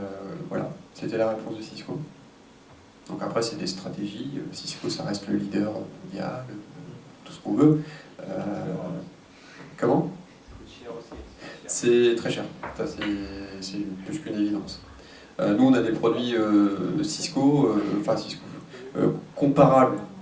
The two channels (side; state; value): both; identical; correlation 1.00